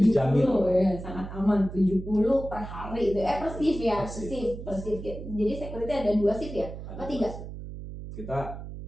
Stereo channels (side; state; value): right; noise; hum, 10 dB below the sound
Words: ya, sangat aman. 70 per hari itu. Per shift ya, Per shift. per shift. Jadi security ada 2 shift ya? Apa 3? Kita